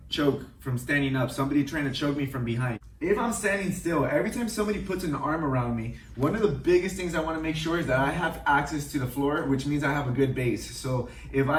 choke from standing up, somebody trying to choke me from behind. If I'm standing still, every time somebody puts an arm around me, one of the biggest things I want to make sure is that I have access to the floor, which means I have a good base. So if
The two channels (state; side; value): identical; both; correlation 1.00